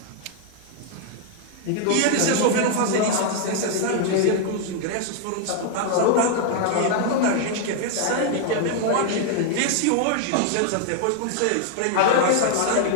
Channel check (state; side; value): different; both; correlation 0.00